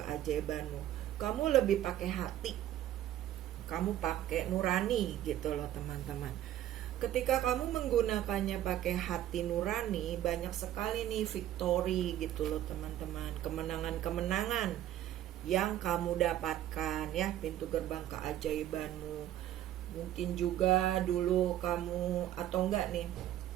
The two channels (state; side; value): quieter; left; 12.4 dB